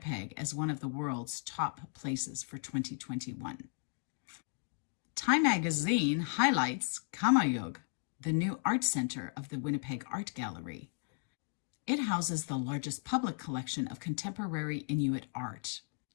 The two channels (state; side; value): silent; right; 54 dB below the other